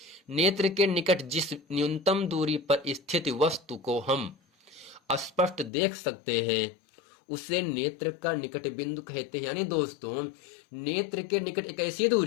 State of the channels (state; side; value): drops out; right; at 5.7 s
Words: नेत्र के निकट जिस न्यूनतम दूरी पर स्थित वस्तु को हम स्पष्ट देख सकते हैं उसे नेत्र का निकट बिंदु कहते हैं। यानी दोस्तों, नेत्र के निकट एक ऐसी